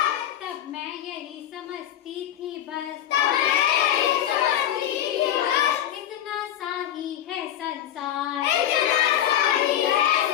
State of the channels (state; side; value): quieter; right; 11.1 dB